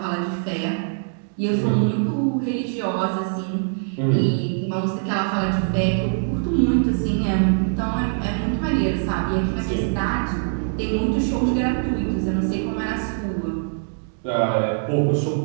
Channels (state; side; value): silent; left; digital silence